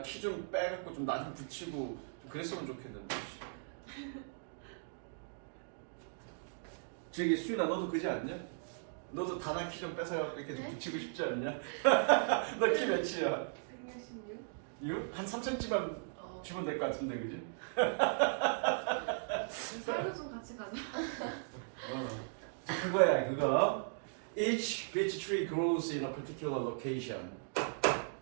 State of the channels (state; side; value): silent; left; digital silence